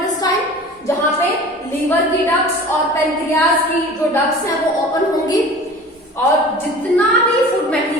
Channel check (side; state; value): both; normal; correlation 0.41